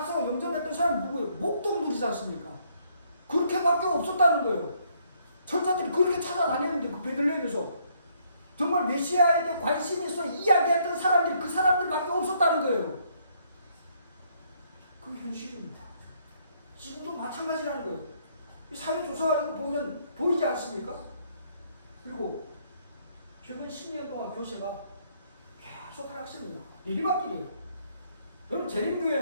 영접했던 사람이 누구예요? 목동물이지 않습니까? 그렇게밖에 없었다는 거예요. 천사들이 그렇게 찾아다녔는데 그 베들레헴에서 정말 메시아에 대해 관심이 있어 이야기했던 사람들이 그 사람들밖에 없었다는 거예요. 그게 현실입니다. 지금도 마찬가지라는 거예요. 사회조사 보면 보이지 않습니까? 그리고 최근 10년 동안 교세가 계속 하락습니다. 내리막길이에요. 여러분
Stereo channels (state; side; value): inverted; both; correlation -0.68